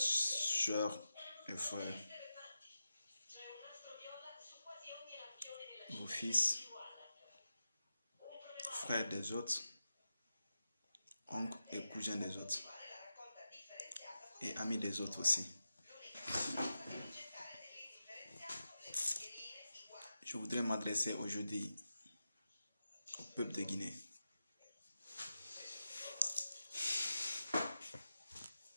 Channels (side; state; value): both; inverted; correlation -0.90